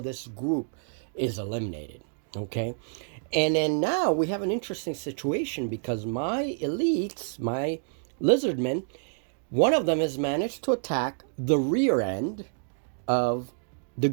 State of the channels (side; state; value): left; silent; digital silence